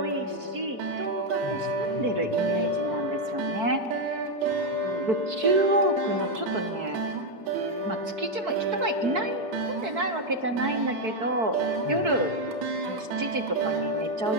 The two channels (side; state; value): left; late; 4.6 ms